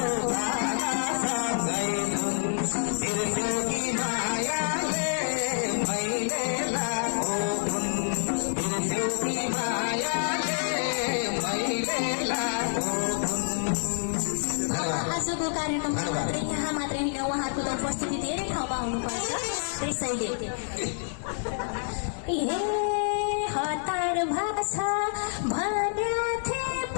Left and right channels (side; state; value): right; silent; 59 dB below the other